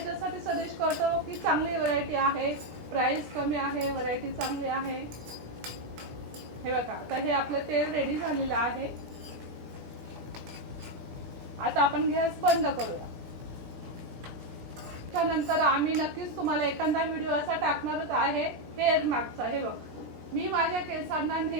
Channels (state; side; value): late; left; 17 ms